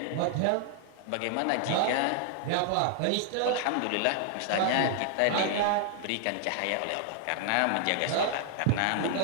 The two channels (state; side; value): different; both; correlation 0.00